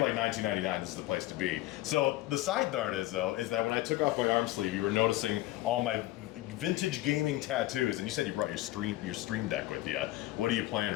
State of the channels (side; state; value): right; quieter; 16.7 dB